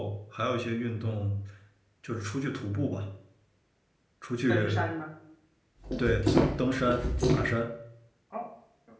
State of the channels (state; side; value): identical; both; correlation 1.00